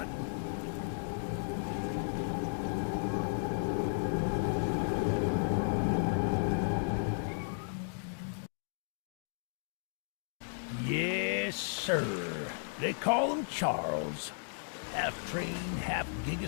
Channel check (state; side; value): silent; right; digital silence